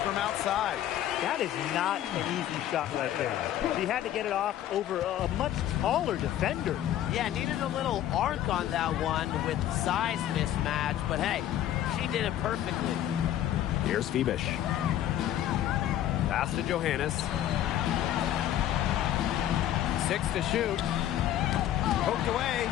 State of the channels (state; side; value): quieter; right; 11.9 dB